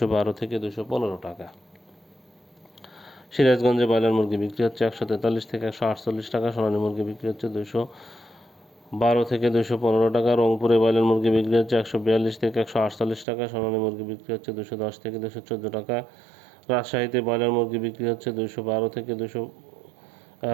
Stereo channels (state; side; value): drops out; left; at 13.2 s